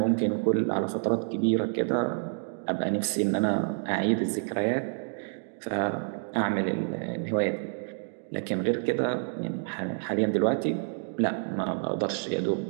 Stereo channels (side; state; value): left; silent; 59 dB below the other